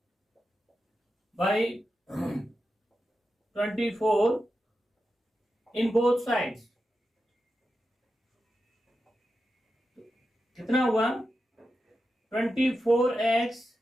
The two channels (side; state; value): both; normal; correlation 0.90